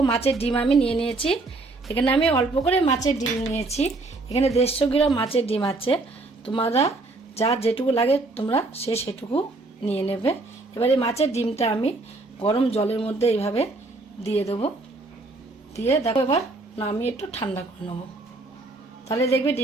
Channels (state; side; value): quieter; left; 3.2 dB